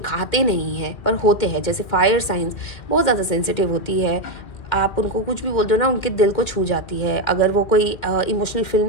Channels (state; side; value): late; right; 2.1 ms